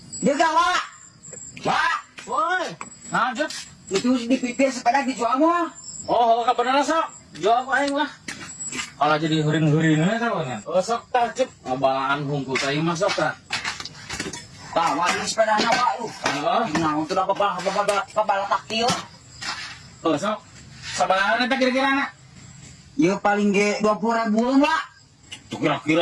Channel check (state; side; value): identical; both; correlation 1.00